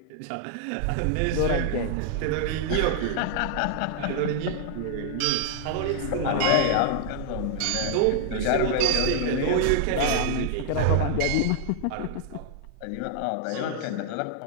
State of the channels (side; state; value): both; different; correlation -0.01